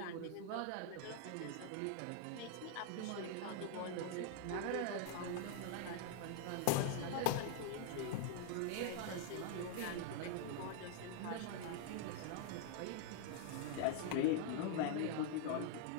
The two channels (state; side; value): different; both; correlation 0.00